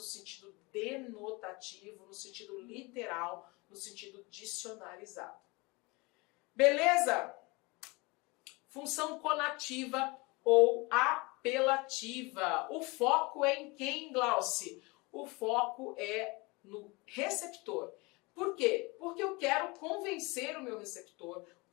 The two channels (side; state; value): right; quieter; 25.7 dB